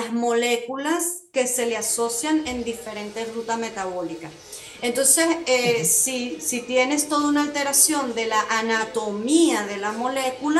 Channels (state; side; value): identical; both; correlation 1.00